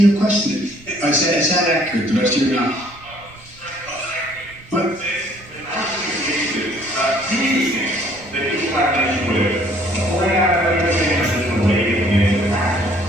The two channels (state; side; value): noise; right; rumble, 23 dB below the sound